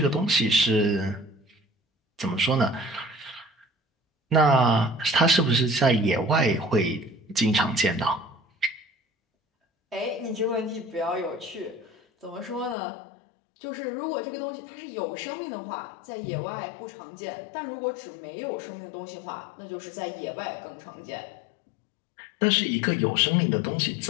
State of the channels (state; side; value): drops out; right; at 12.8 s